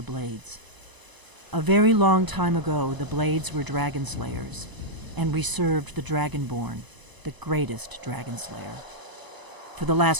Blades. A very long time ago, the Blades were dragon slayers, and we served the Dragonborn, the greatest dragon slayer. For the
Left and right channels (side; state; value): left; late; 1.0 ms